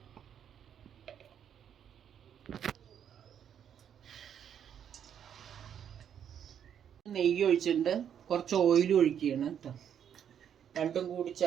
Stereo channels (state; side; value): quieter; left; 8.9 dB